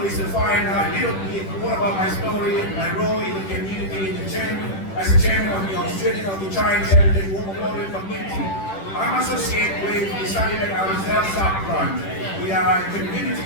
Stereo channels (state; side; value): late; right; 10 ms